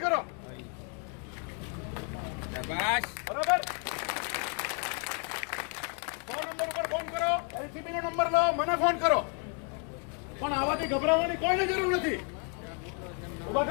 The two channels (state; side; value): quieter; right; 39.2 dB